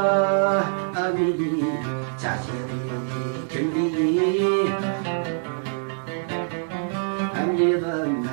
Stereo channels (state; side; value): silent; left; 62 dB below the other